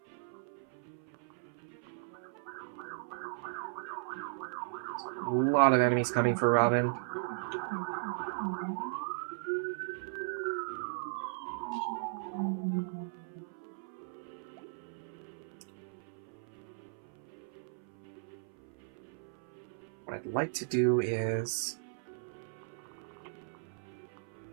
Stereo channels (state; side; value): silent; left; 53 dB below the other